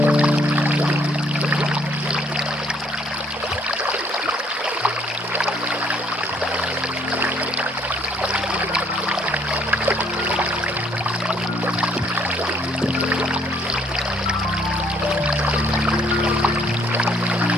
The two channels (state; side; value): normal; both; correlation 0.65